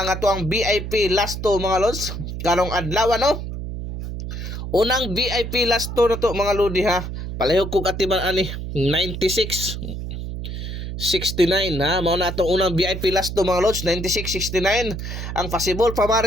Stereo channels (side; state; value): right; noise; hum, 6 dB below the sound